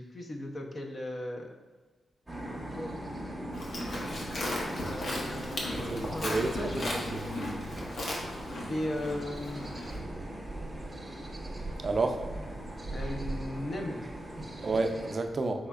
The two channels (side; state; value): both; normal; correlation 0.88